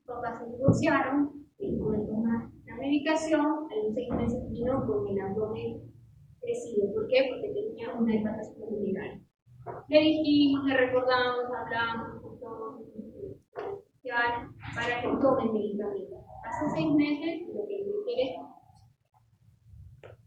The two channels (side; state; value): both; identical; correlation 1.00